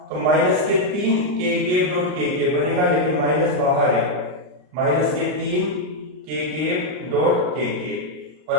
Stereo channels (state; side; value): late; left; 39 ms